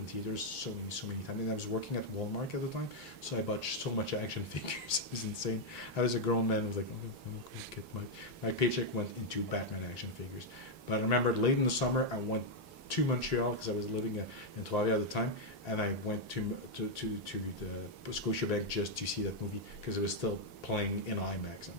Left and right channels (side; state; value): both; normal; correlation -0.01